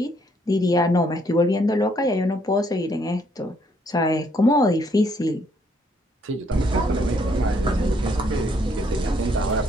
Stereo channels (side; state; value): both; normal; correlation 0.69